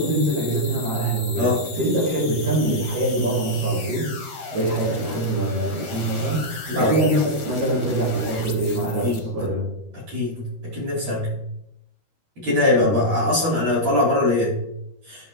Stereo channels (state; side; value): late; left; 13 ms